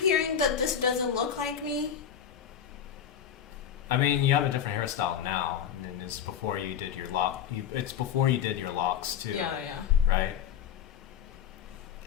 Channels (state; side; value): quieter; right; 8.9 dB